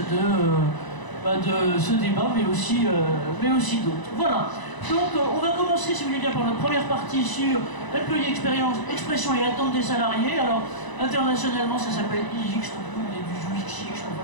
de ce débat, mais aussi d'autres. Voilà. Donc on va commencer, si vous voulez bien, par notre première partie sur employé expérience, expression et attente des salariés. Alors, internationalement, ça s'appelle IX, donc nous on est du UXX, on va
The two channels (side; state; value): right; late; 1.0 ms